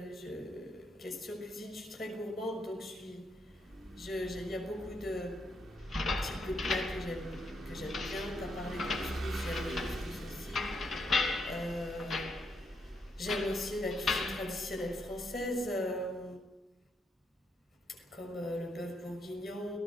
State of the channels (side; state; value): both; normal; correlation 0.78